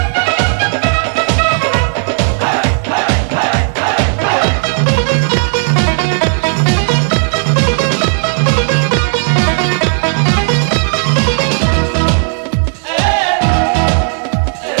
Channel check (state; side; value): silent; left; 64 dB below the other